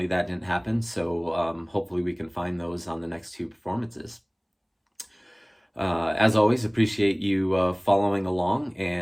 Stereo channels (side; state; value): both; identical; correlation 1.00